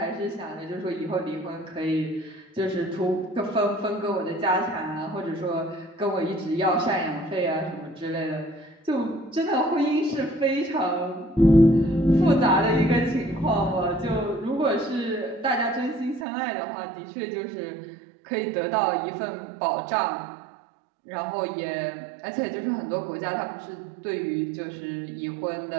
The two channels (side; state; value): left; drops out; at 16.2 s